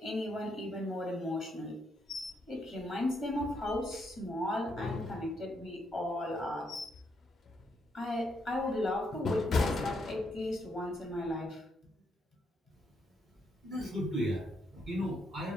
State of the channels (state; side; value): normal; both; correlation 0.77